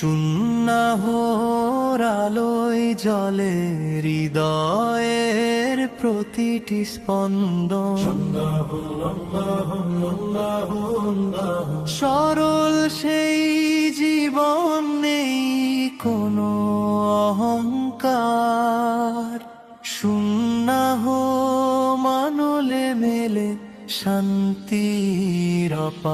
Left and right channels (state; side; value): identical; both; correlation 1.00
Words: আলোয় জ্বলে হৃদয়ের প্রতিটি স্পন্দন। সরল সেই জীবন, নেই কোনো অহংকার, সুন্নাহ মানলে মেলে শান্তির